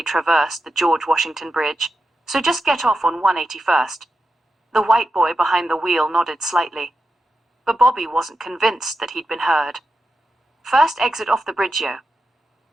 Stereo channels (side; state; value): both; normal; correlation 0.88